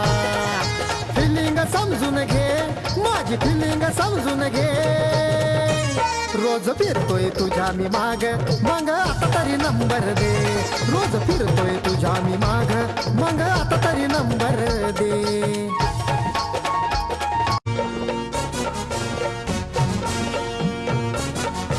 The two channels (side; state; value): both; identical; correlation 1.00